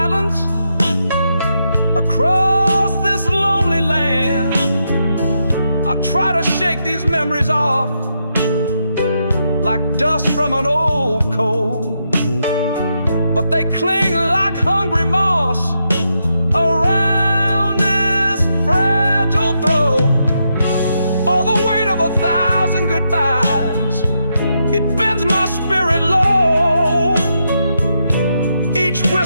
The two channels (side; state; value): both; inverted; correlation -0.82